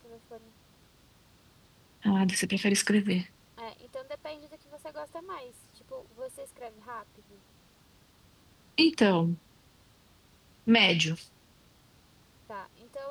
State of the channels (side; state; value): both; identical; correlation 1.00